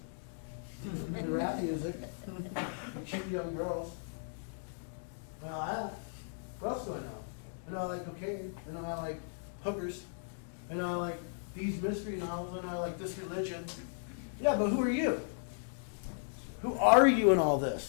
And rap music. And cute young girls. What else do I know? I know I like cocaine. I know I like hookers. I know I like these mystery novels. I know I like this religion. Yeah, but who are you? Who are you in all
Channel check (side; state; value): right; silent; digital silence